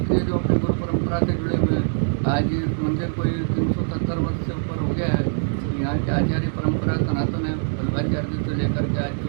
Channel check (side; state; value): left; silent; 63 dB below the other